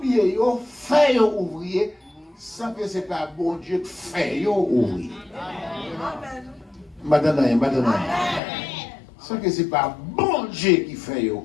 ils ont fait ouvrier, sans que ce n'est pas bon Dieu qui fait ouvrier. Maintenant, sans que ce n'est pas bon Dieu qui fait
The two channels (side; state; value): right; drops out; at 8.4 s